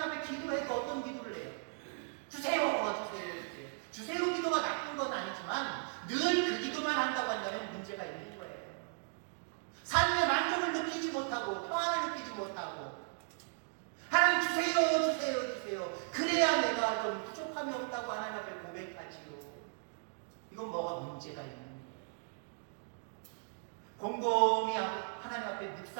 앞에 기도해도 어떤 기도를 해요? 주세요. 주세요 기도가 나쁜 건 아니지만 늘 그 기도만 한다고 한다면 문제가 있는 거예요. 삶의 만족을 느끼지 못하고 평안을 느끼지 못하고 하나님 주세요. 그래야 내가 좀 부족함이 없다고 하나님 앞에 고백하지요. 이건 뭐가 문제가 있는 거예요. 곰곰이 하나님 앞에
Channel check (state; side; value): silent; left; digital silence